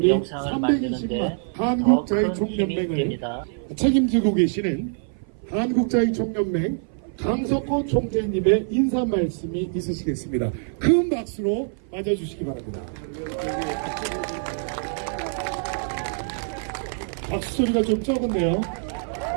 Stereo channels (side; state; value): left; silent; 55 dB below the other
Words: 영상을 만드는데 320만 더 한국자의 큰 힘이 총연맹을 됩니다. 책임지고 계시는 한국자의 총연맹 강석호 총재님의 인사 말씀이 있으시겠습니다. 큰 박수로 맞아주시기 바랍니다. 박수 소리가 좀 적은데요.